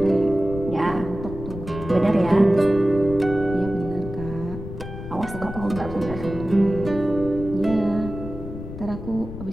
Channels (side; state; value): left; noise; rumble, 10 dB below the sound